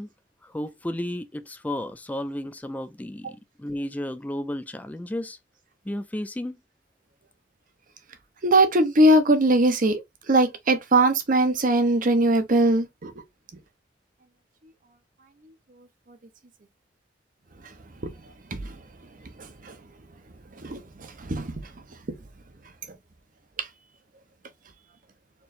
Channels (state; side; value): normal; both; correlation 0.28